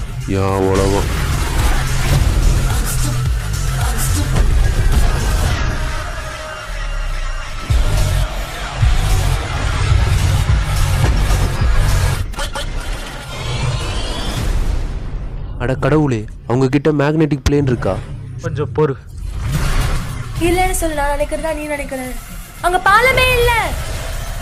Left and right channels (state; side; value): identical; both; correlation 1.00